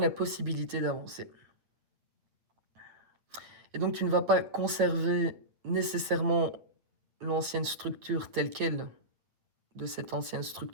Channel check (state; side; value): late; left; 9.0 ms